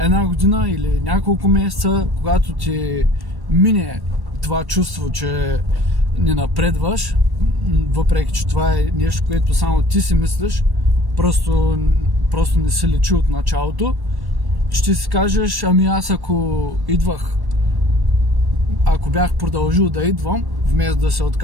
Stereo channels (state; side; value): late; left; 1.1 ms